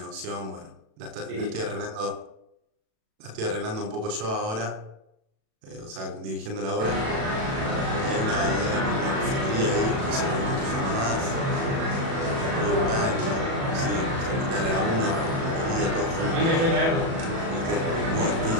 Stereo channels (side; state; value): left; late; 36 ms